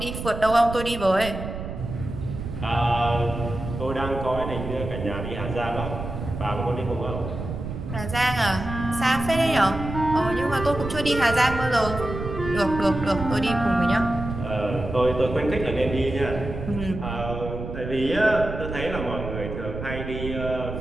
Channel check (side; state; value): right; noise; rumble, 7 dB below the sound